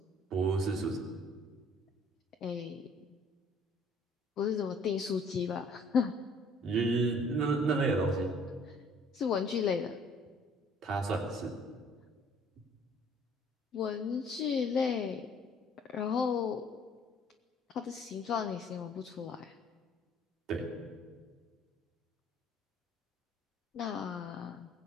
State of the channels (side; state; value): both; normal; correlation 0.57